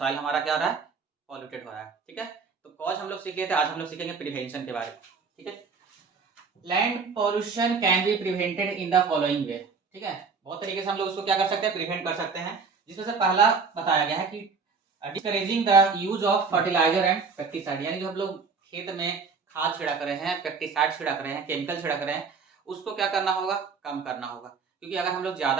हमारा क्या हो रहा है? पॉल्यूटेड हो रहा है। ठीक है, तो कॉज हम लोग सीख लिए थे, आज हम लोग सीखेंगे प्रिवेंशन के बारे में। ठीक है, land pollution can be prevented in the following वे। ठीक है, बहुत तरीके से हम लोग उसको क्या कर सकते हैं? प्रिवेंट कर सकते हैं, जिसमें से पहला बताया गया है कि discouraging the use of fertiliser and pesticide, यानी जो हम लोग खेत में खाद छिड़क रहे हैं, पेस्टिसाइड छिड़क रहे हैं, केमिकल छिड़क रहे हैं, उसको क्या करना होगा? कम करना होगा। क्योंकि अगर हम लोग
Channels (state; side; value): quieter; left; 5.1 dB